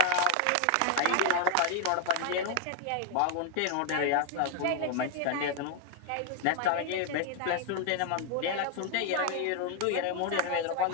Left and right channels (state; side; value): different; both; correlation 0.00